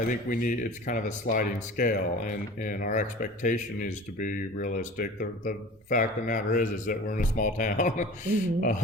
we need, it's kind of a sliding scale, and our expectation is to be realistic. The fact of the matter is that we're in a small town.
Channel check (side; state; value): both; normal; correlation 0.40